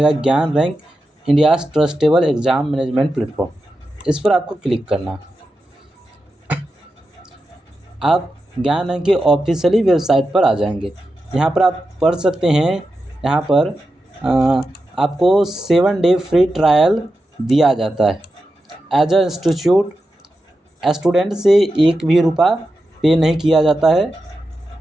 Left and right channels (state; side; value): normal; both; correlation 0.89